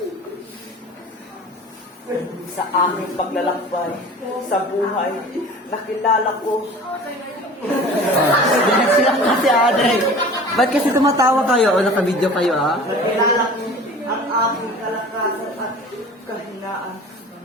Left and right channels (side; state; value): both; normal; correlation 0.41